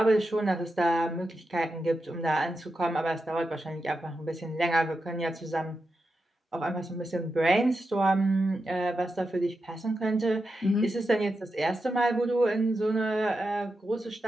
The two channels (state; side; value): normal; both; correlation 0.88